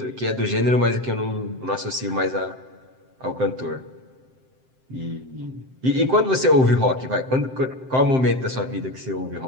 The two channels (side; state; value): left; late; 7.7 ms